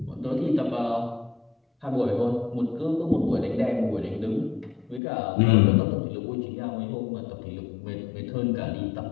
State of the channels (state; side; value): drops out; right; at 5.0 s